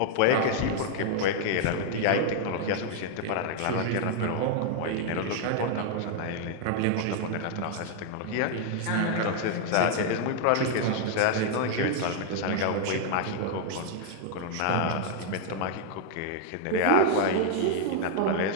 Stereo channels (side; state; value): both; different; correlation 0.00